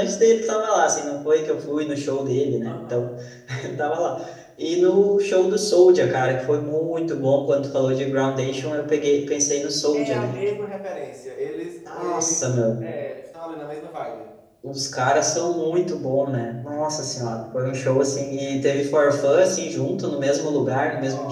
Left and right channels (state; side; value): identical; both; correlation 1.00